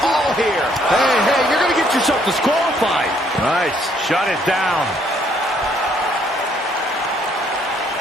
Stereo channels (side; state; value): both; normal; correlation 0.67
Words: all here. Hey, you're going to get yourself disqualified. Nice, shut it down.